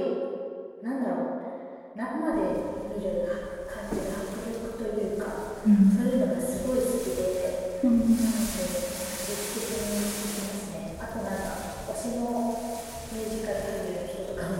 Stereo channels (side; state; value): both; identical; correlation 1.00